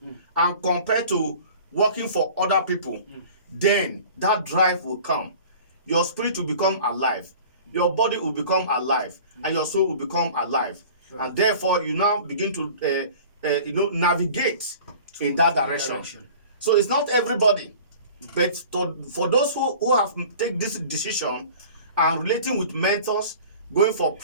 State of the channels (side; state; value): both; inverted; correlation -0.43